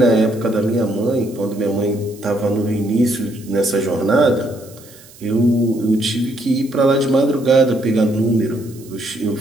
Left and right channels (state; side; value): noise; right; hiss, 23 dB below the sound